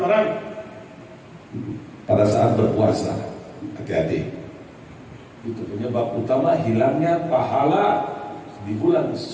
orang pada saat berpuasa. Hati-hati. Itu penyebab utama hilangnya pahala di bulan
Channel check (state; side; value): identical; both; correlation 1.00